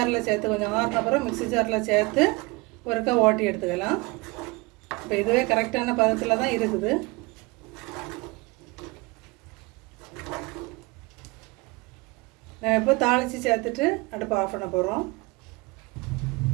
சேர்த்து கொஞ்சம் ஆறின அப்புறம் மிக்ஸி ஜாரில் சேர்த்து ஒருக்கா ஓட்டி எடுத்துக்கலாம். இப்போ இதுவே கரெக்டான பதத்தில் தான் இருக்குது. நம்ம இப்போ தாளித்து சேர்த்துட்டு அடுப்பு ஆஃப் பண்ண போகிறோம்.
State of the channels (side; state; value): left; quieter; 25.1 dB